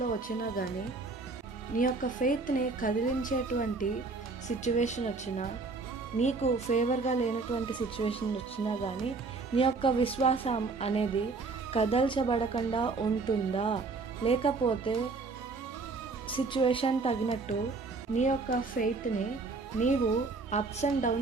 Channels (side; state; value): left; quieter; 4.0 dB